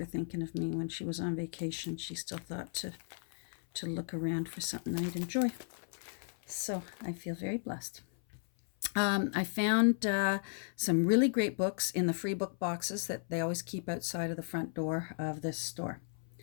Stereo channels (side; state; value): right; silent; 54 dB below the other